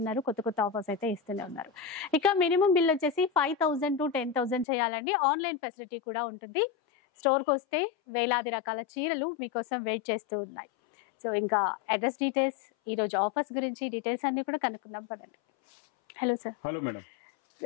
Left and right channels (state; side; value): drops out; right; at 4.7 s